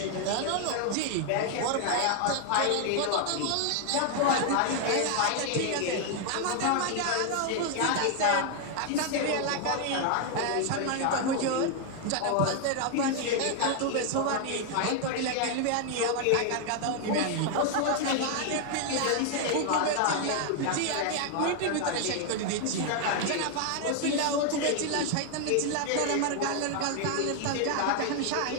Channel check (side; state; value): both; different; correlation 0.00